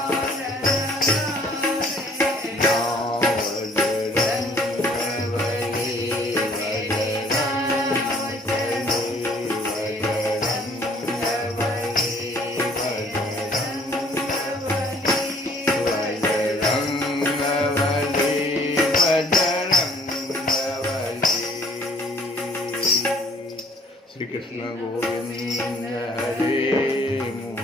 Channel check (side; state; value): both; normal; correlation 0.58